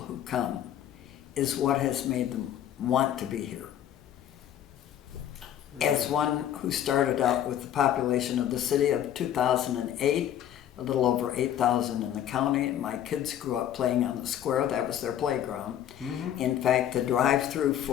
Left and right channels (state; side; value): quieter; right; 10.8 dB